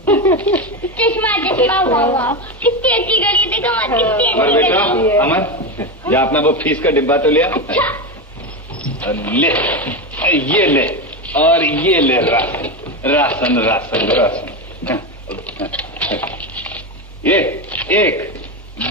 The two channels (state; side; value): normal; both; correlation 0.16